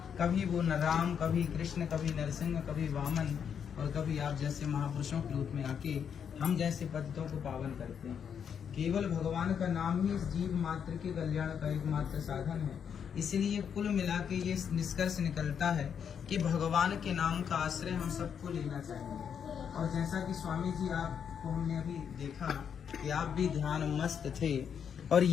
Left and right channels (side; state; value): right; quieter; 7.6 dB